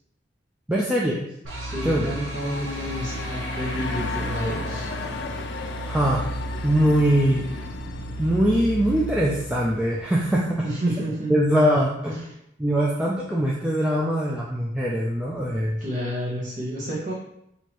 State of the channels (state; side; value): normal; both; correlation 0.77